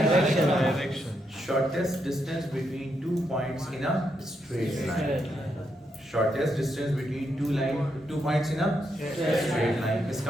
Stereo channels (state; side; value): normal; both; correlation 0.80